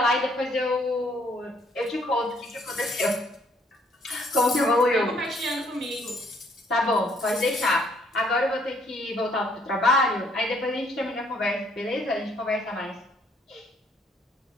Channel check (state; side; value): normal; both; correlation 0.66